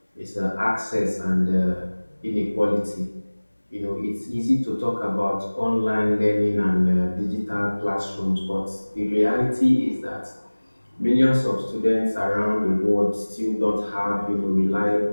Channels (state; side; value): inverted; both; correlation -1.00